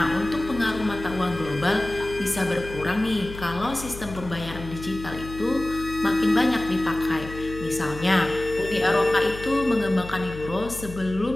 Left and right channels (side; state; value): left; noise; hum, 12 dB below the sound